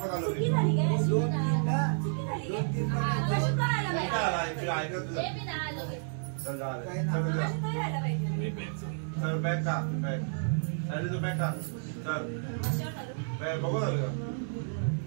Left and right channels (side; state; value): left; silent; digital silence